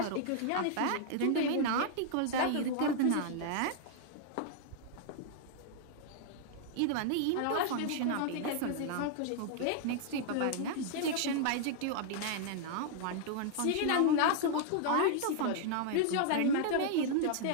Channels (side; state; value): both; different; correlation 0.00